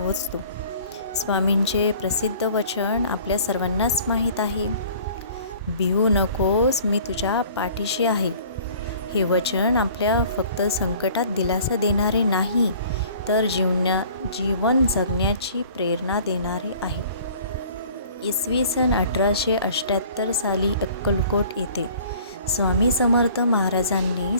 स्वामींचे प्रसिद्ध वचन आपल्या सर्वांनाच माहीत आहे. भिवू नकोस, मी तुझ्या पाठीशी आहे. हे वचन आपल्या फक्त संकटात दिलासा देणारे नाही, तर जीवन जगण्याची प्रेरणा देणारे आहे. इसवी सन 1878 साली अक्कलकोट येथे स्वामी समर्थ महाराजांनी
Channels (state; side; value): inverted; both; correlation -0.50